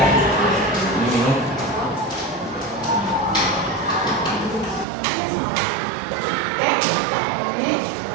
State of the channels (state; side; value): drops out; left; at 4.9 s